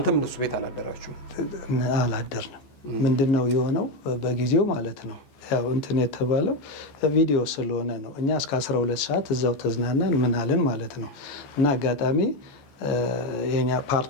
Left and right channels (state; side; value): late; right; 14 ms